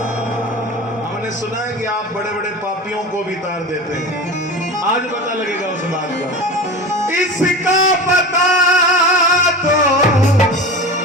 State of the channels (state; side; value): normal; both; correlation 0.31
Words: हमने सुना है कि आप बड़े बड़े पापियों को भी तार देते हैं, आज पता लगेगा उस बात का। इसका पता तो